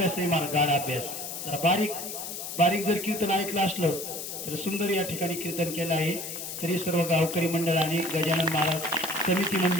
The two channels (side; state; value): left; noise; hiss, 7 dB below the sound